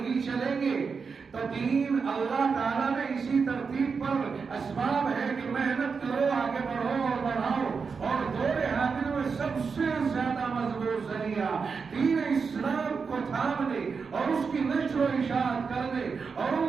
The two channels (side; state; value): left; quieter; 5.3 dB